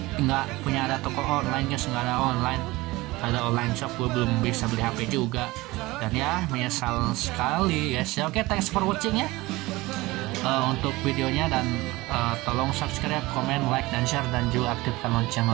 punya ada toko online guys, nggak ada online. Ada online shop, gue belum bisa beli HP juga. Dan ya, menyesal sekali guys ya. Oke, thanks for watching ya untuk videonya. Dan tolong subscribe, komen, like, dan share. Dan juga aktifkan lonceng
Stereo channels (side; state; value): left; quieter; 20.5 dB